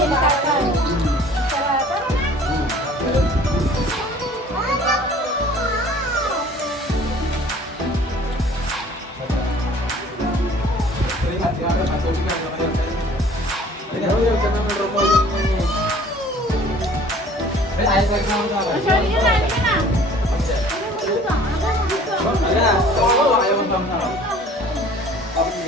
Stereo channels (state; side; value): normal; both; correlation 0.51